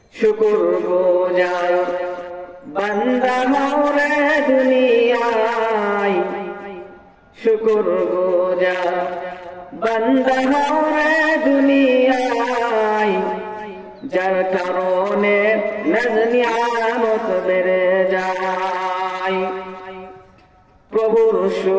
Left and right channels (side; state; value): both; identical; correlation 1.00